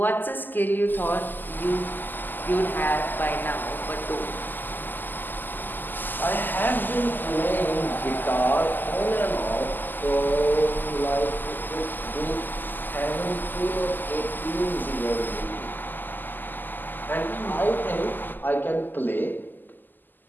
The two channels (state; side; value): late; right; 0.089 ms